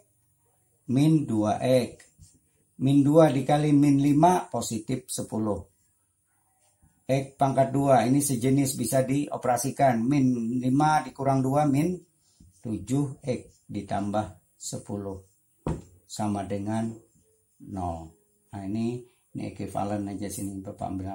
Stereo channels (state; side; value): identical; both; correlation 1.00